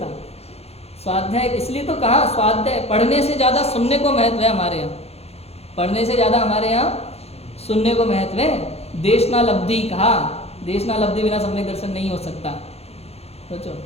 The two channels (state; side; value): late; right; 0.30 ms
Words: स्वाध्याय इसलिए तो कहा, स्वाध्याय पढ़ने से ज़्यादा सुनने को महत्व है हमारे यहाँ। पढ़ने से ज़्यादा हमारे यहाँ सुनने को महत्व है। देशना लब्धि कहा, देशना लब्धि बिना सम्यक दर्शन नहीं हो सकता। सोचो,